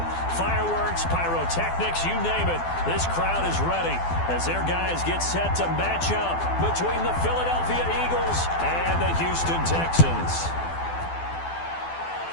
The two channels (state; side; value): late; right; 12 ms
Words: Fireworks, pyrotechnics, you name it. This crowd is ready as their guys get set to match up between the Philadelphia Eagles and the Houston Texans.